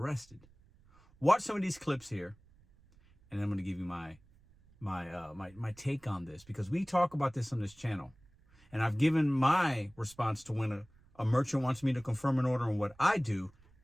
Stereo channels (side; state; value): right; noise; rumble, 28 dB below the sound